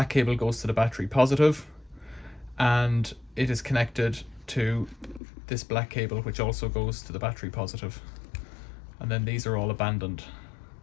cable goes to the battery positive, and it is connected to this black cable, which also goes to the battery positive. And then these are all abandoned.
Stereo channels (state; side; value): drops out; right; at 5.2 s